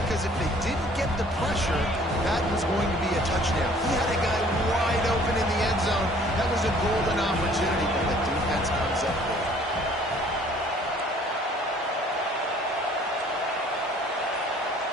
because if they didn't get the pressure, that was going to be a touchdown. He had a guy wide open in the end zone. That was a golden opportunity, but the defense comes up with it.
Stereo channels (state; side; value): normal; both; correlation 0.55